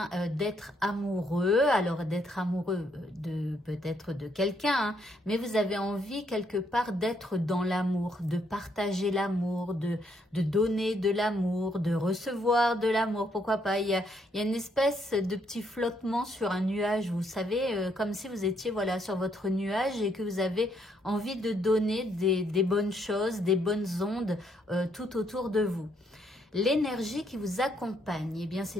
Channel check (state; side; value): normal; both; correlation 0.73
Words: amoureux. Alors, d'être amoureux de peut-être de quelqu'un, hein, mais vous avez envie quelque part d'être dans l'amour, de partager l'amour, de donner de l'amour, de recevoir de l'amour. Pourquoi pas, il y a une espèce de petit flottement sur un nuage, vous savez, comme si vous étiez voilà sur votre nuage et que vous avez envie de donner des bonnes choses, des bonnes ondes tout autour de vous. L'énergie qui vous accompagne, eh bien,